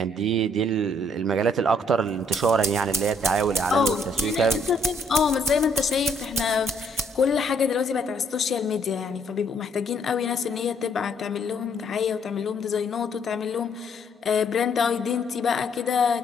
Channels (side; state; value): both; normal; correlation 0.68